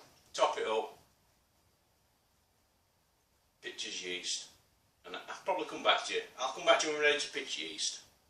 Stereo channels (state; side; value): identical; both; correlation 1.00